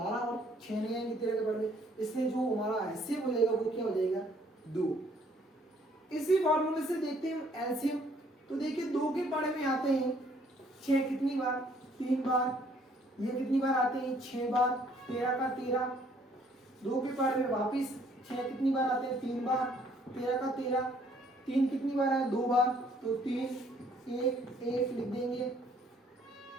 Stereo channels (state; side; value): normal; both; correlation 0.63